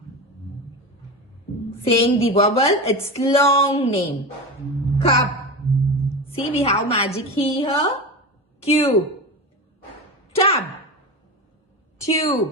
Saying the vowel, its long name. Cup. See, we have magic E here. Cube. Tub.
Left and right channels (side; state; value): both; normal; correlation 0.24